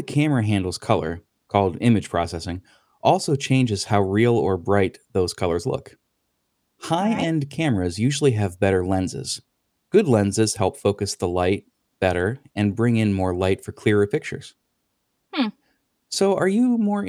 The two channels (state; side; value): identical; both; correlation 1.00